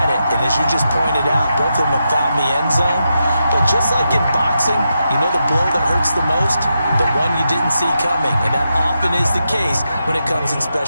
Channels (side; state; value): both; inverted; correlation -0.86